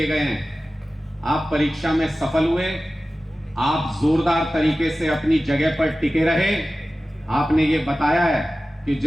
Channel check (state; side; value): normal; both; correlation 0.96